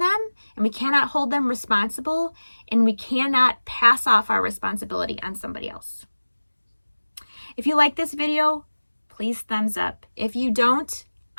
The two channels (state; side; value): inverted; both; correlation -1.00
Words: and we cannot hold them responsible and we cannot pass off our responsibility on somebody else. If you like this video, please thumbs up. If you don't,